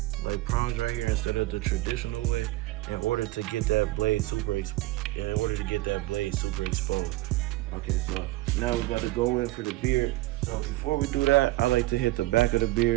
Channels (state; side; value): quieter; left; 18.5 dB